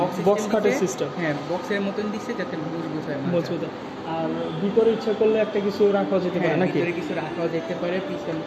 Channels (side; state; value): both; identical; correlation 1.00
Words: বক্স কাঠের সিস্টেম। বক্সের মতন দিচ্ছে যাতে মজবুত হয়। মজবুত। আর ভিতরে ইচ্ছা করলে একটা কিছু রাখা যেতে পারে নাকি? ভিতরে কিছু রাখাও যেতে পারে, পিছন